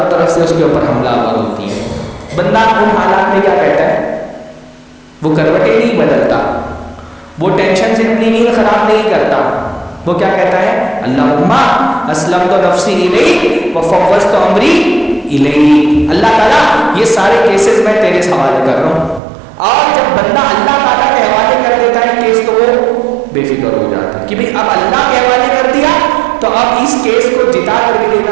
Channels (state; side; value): drops out; left; at 19.2 s